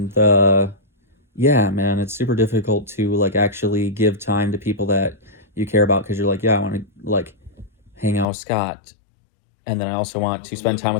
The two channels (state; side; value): drops out; right; at 8.2 s